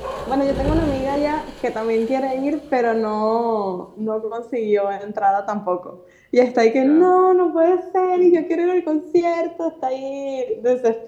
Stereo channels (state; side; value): identical; both; correlation 1.00